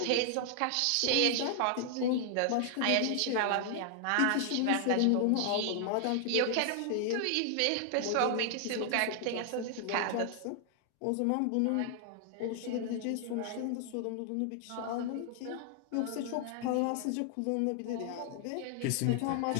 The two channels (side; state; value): both; different; correlation 0.00